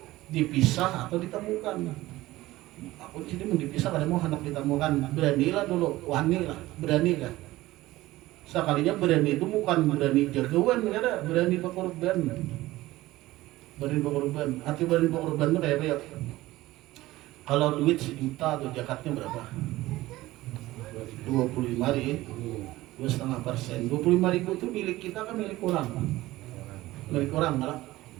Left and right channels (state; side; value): quieter; left; 17.5 dB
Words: dipisah atau ditemukan. Aku di sini mau dipisah, kada mau hendak ditemukan. Beranilah dulu, wani lah, berani kan. Sekalinya berani itu bukan berani jagoan, kada berani berkorban. Berani berkorban. Arti berani berkorban itu kayak apa ya? Kalau duit 1 juta tuh zakatnya berapa? 25.000, 2,5%. 25.000 itu milik kita kan milik orang. Milik orang malah.